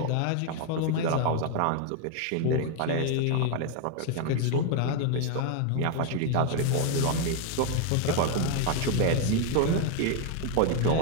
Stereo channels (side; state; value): both; different; correlation 0.01